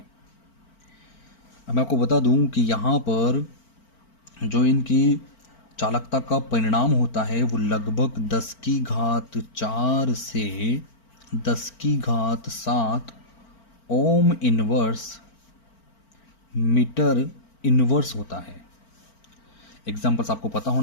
अब मैं आपको बता दूं कि यहाँ पर जो इनकी चालकता का परिणाम होता है वो लगभग 10⁴ से 10⁻7 ओम इनवर्स मीटर इनवर्स होता है। एग्जाम्पल्स आपको पता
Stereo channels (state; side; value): late; right; 4.4 ms